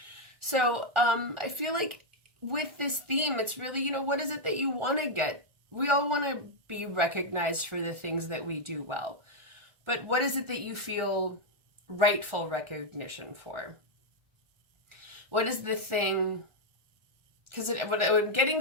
So I feel like with this theme, it's really, you know, what is it that you want to get? We all want to be recognized for the things that we do well. But what is it that you feel rightful recognition for? What is the thing? Because what I'm getting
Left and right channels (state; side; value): late; left; 1.4 ms